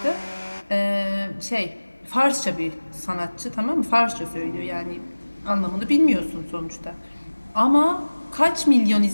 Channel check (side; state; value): both; inverted; correlation -1.00